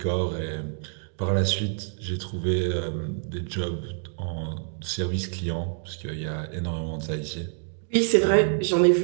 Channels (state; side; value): silent; left; digital silence